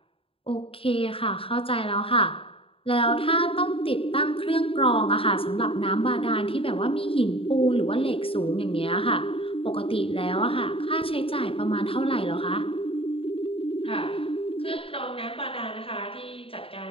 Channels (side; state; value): right; late; 0.27 ms